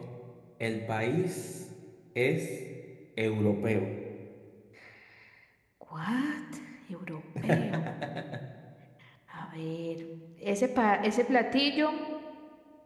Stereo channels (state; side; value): identical; both; correlation 1.00